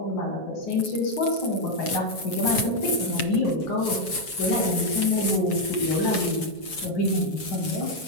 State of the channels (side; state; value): right; late; 7.2 ms